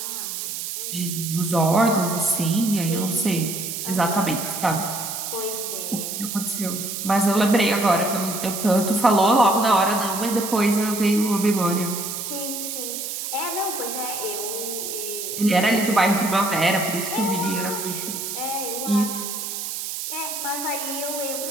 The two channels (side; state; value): right; noise; hiss, 5 dB below the sound